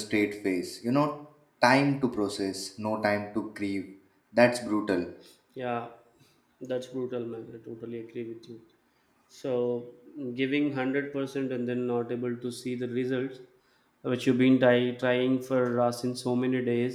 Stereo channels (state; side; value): identical; both; correlation 1.00